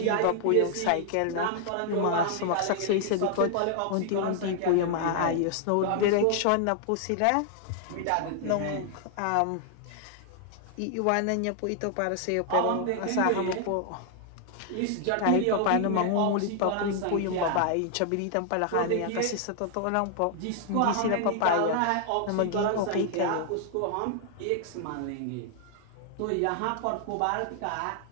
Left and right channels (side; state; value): both; different; correlation 0.00